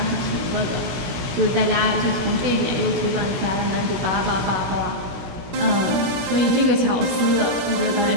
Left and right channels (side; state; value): left; late; 17 ms